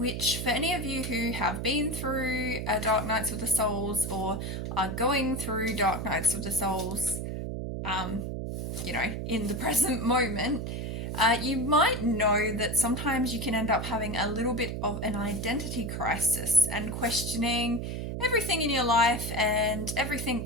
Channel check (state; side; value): noise; right; hum, 4 dB below the sound